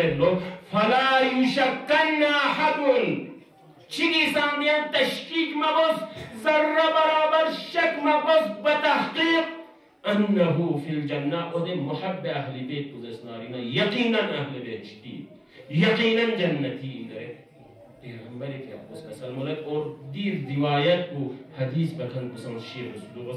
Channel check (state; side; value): identical; both; correlation 1.00